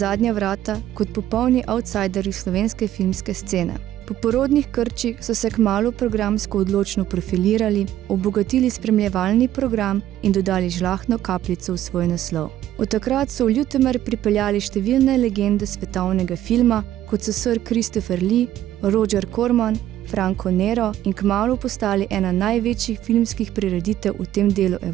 vrata, kot popolni outsiderji slovenske filmske scene. Po porodnih krčih so se kmalu programsko odločno profilirali, obogatili spremljevalni program in dodali žlahtno kapljico v svoj naslov. Od takrat so v Ljutomer pripeljali številne legende svetovnega filma, kot so Sir Christopher Lee, Roger Corman, Franco Nero in kmalu postali ena največjih filmskih prireditev v tem delu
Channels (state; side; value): quieter; left; 12.7 dB